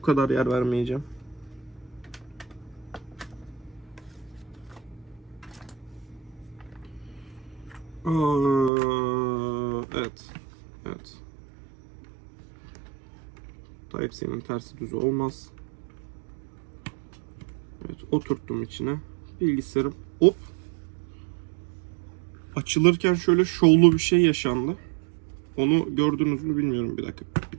kadar yer vermeyeceğim. Evet. Evet. Type-C'nin tersi düzü olmaz. Evet, oturttum içine. Bilgisayarım hop. Açılırken şöyle şovlu bir şey yaşandı. Onu gördünüz mü bilmiyorum. Bir dakika. Bir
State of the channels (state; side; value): drops out; left; at 8.7 s